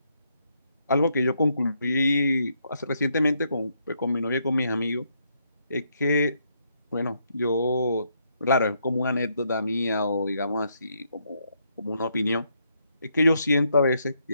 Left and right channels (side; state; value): both; inverted; correlation -0.76